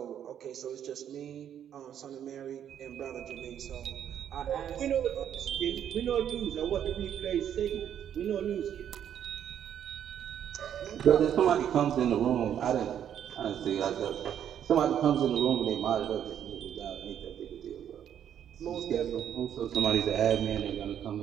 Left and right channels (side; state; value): left; quieter; 9.6 dB